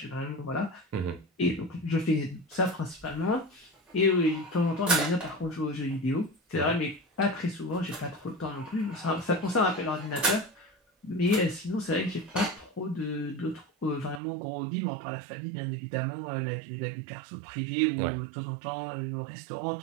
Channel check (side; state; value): left; drops out; at 14.2 s